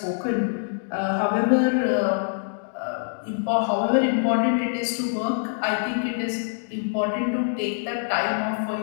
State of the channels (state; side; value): silent; right; digital silence